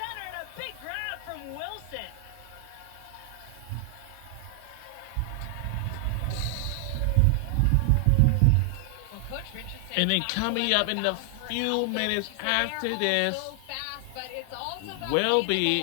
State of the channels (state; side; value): different; both; correlation 0.00